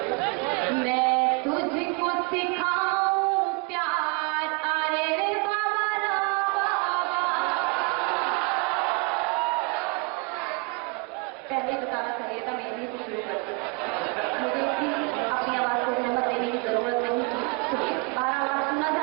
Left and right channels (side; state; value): left; quieter; 29.2 dB